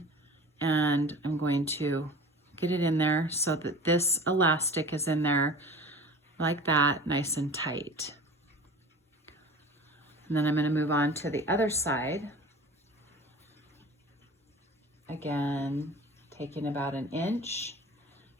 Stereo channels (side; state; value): both; normal; correlation 0.40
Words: and I'm going to get it in there so that this elastic is in there like that, nice and tight. And then I'm going to move on to the other side. Again, taking about an inch